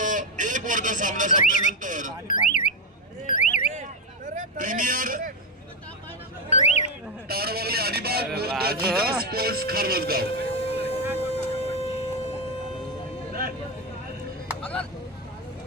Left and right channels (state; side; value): normal; both; correlation 0.08